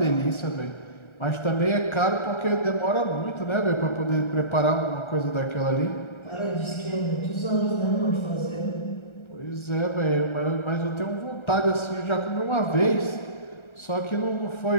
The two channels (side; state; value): right; late; 1.3 ms